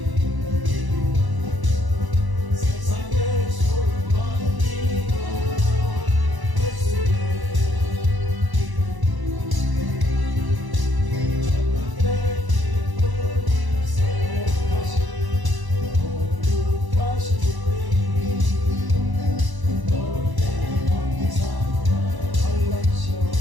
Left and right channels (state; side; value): late; left; 1.0 ms